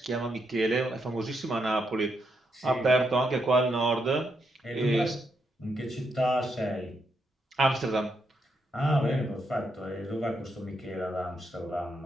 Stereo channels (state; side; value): normal; both; correlation 0.80